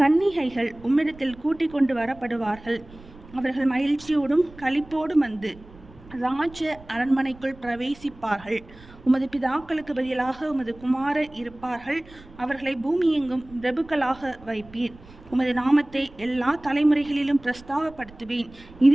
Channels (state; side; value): noise; right; rumble, 21 dB below the sound